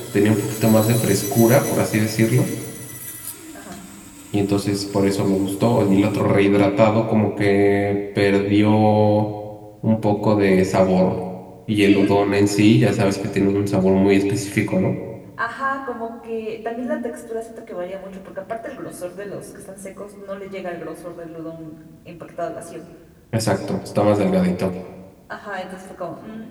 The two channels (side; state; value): both; identical; correlation 1.00